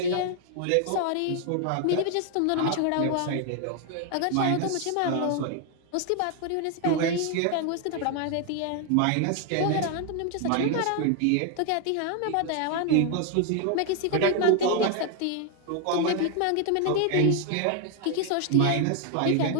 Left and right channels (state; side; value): different; both; correlation 0.00